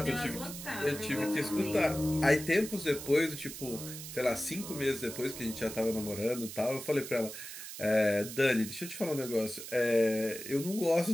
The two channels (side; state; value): right; noise; hiss, 10 dB below the sound